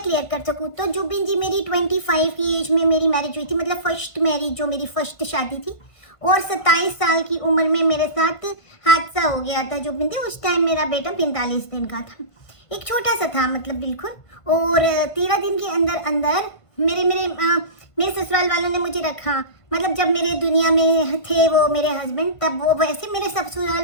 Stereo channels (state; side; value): late; right; 1.5 ms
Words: क्लियर कर सकूँ। तो जुबिन जी, मेरी 25 की एज में मेरी मैरिज हुई थी, मतलब फर्स्ट मैरिज जो मेरी फर्स्ट शादी थी। और 27 साल की उम्र में मेरे साथ हादसा हो गया था जुबिन जी। उस टाइम मेरा बेटा 45 दिन का था, एक छोटा सा था मतलब बिल्कुल। और 13 दिन के अंदर अंदर मेरे ससुराल वालों ने मुझे रखा। मतलब जब मेरे दुनिया में थे वो मेरे हस्बैंड, तब वो वैसे मेरे